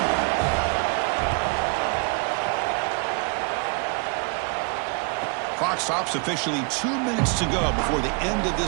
Clock stops, officially 2 minutes to go before the end of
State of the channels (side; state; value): left; quieter; 34.9 dB